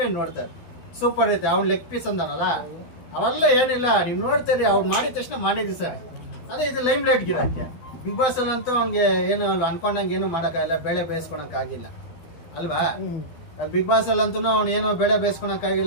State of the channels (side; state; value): right; late; 12 ms